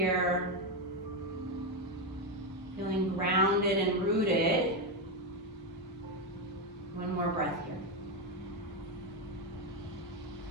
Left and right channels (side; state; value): both; normal; correlation 0.08